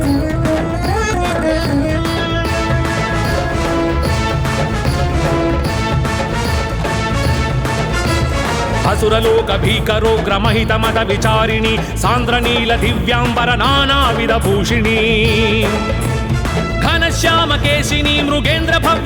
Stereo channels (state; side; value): identical; both; correlation 1.00